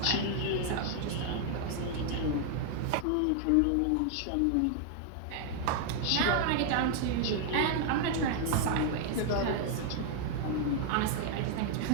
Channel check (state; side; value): different; both; correlation 0.00